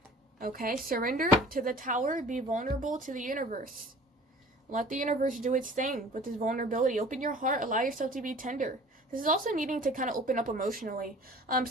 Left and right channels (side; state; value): both; normal; correlation 0.47